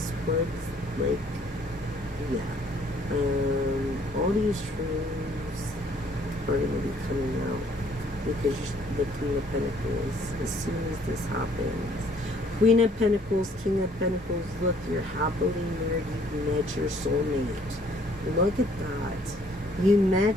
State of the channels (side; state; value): both; normal; correlation 0.61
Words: Swords, all these truths are going to be coming out because the King of Pentacles, as soon as this happens. Queen of Pentacles, King of Pentacles, look, you're happily married, you met your soulmate. Look at that. You